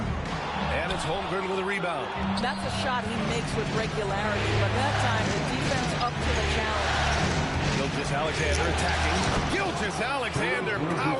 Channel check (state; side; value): identical; both; correlation 1.00